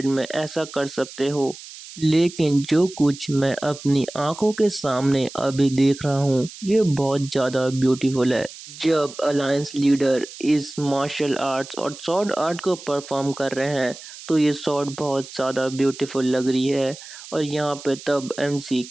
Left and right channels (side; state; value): right; noise; hiss, 15 dB below the sound